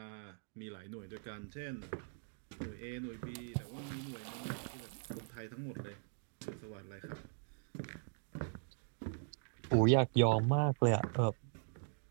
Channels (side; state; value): left; silent; digital silence